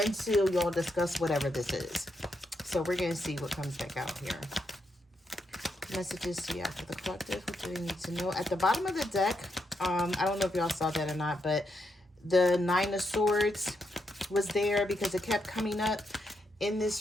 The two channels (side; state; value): both; normal; correlation 0.80